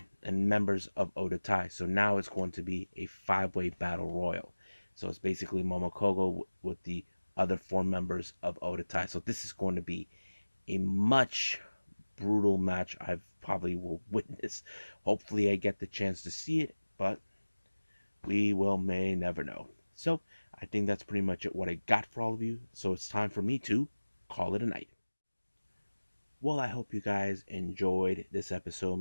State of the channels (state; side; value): inverted; both; correlation -1.00